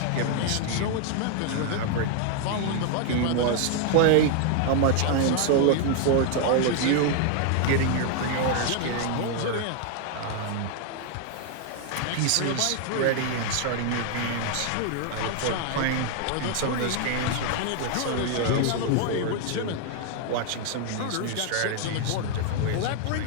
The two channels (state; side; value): different; both; correlation 0.00